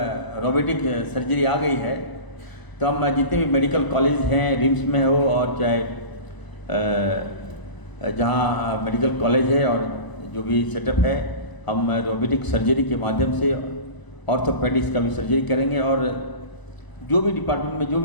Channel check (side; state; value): right; late; 1.0 ms